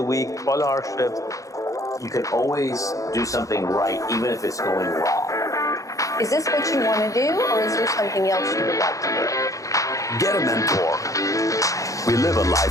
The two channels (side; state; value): right; late; 0.16 ms